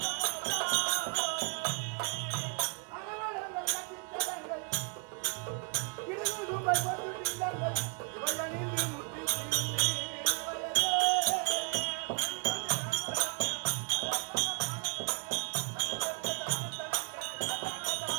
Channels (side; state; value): left; quieter; 34.0 dB